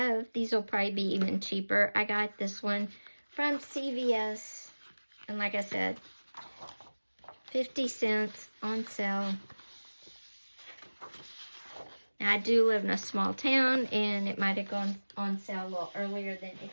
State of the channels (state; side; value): inverted; both; correlation -1.00